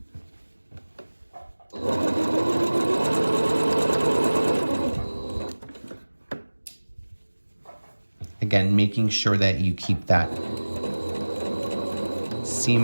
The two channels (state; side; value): inverted; both; correlation -1.00